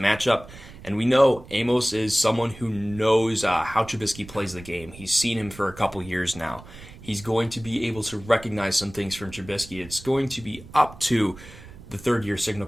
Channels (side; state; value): right; noise; rumble, 18 dB below the sound